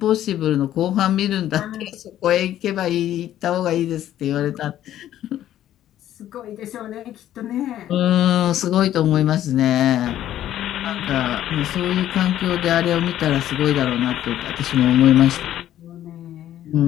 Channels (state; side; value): quieter; right; 12.2 dB